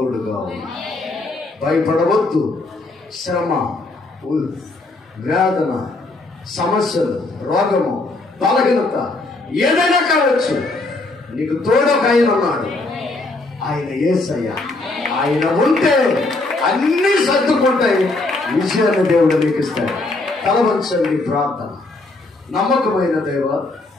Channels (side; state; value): right; quieter; 3.1 dB